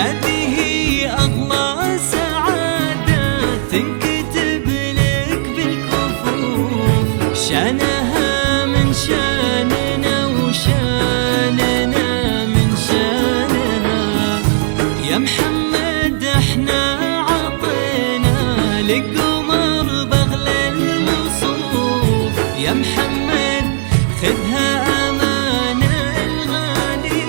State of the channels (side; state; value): left; silent; digital silence